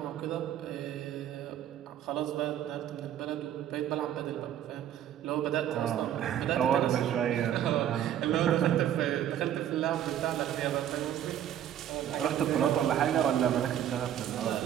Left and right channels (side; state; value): left; quieter; 10.6 dB